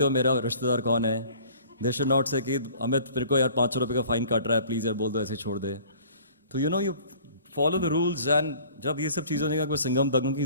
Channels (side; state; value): both; inverted; correlation -0.50